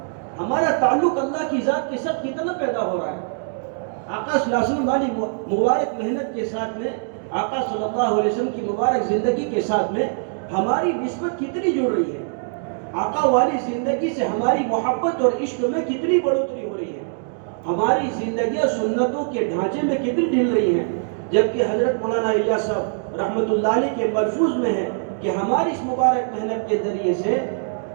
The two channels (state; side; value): silent; left; digital silence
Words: ہمارا تعلق اللہ کی ذات کے ساتھ کتنا پیدا ہو رہا ہے۔ آقا صلی اللہ علیہ وسلم والی مبارک محنت کے ساتھ میں، آقا صلی اللہ علیہ وسلم کی مبارک زندگی کے ساتھ میں ہماری نسبت کتنی جڑ رہی ہے، آقا والی زندگی سے ہماری محبت اور عشق میں کتنی بڑھوتری ہو رہی ہے، ہماری زندگیاں سنتوں کے ڈھانچے میں کتنی ڈھل رہی ہیں، جبکہ حضرت مولانا الیاس صاحب رحمۃ اللہ علیہ کے ملفوظ میں ہے کہ ہماری اس مبارک محنت کے ذریعے سے